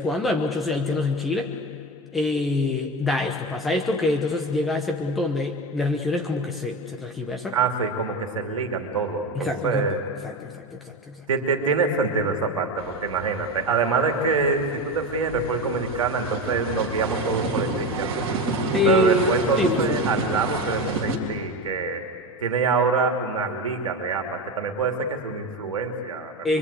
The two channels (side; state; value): both; normal; correlation 0.22